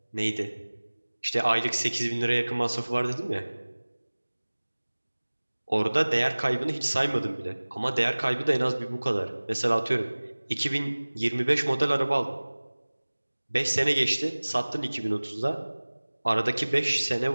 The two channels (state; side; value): inverted; both; correlation -1.00